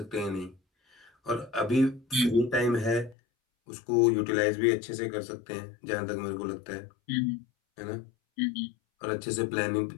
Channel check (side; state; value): right; drops out; at 3.2 s